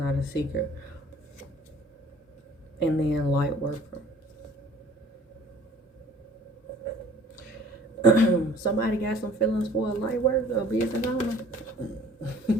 a secret. And then light worker. Somebody got some feelings for a light worker, a business owner.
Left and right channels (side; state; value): both; normal; correlation 0.51